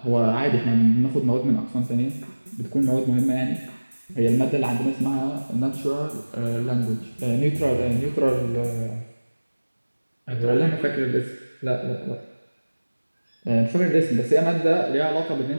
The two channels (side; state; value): both; inverted; correlation -1.00